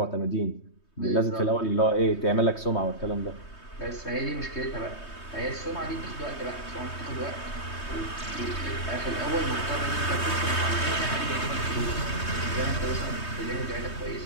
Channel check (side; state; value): right; late; 3.2 ms